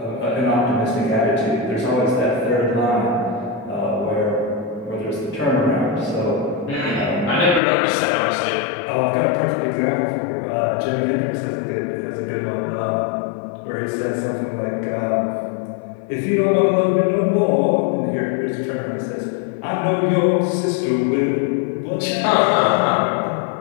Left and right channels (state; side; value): drops out; right; at 7.6 s